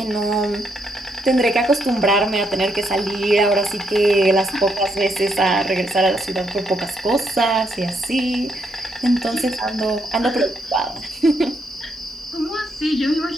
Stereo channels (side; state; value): both; normal; correlation 0.76